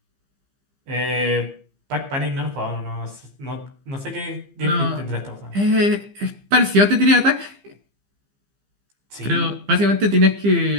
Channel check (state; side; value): late; left; 15 ms